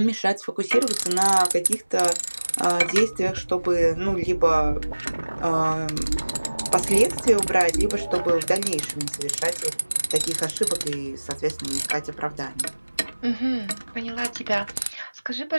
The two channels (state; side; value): inverted; both; correlation -1.00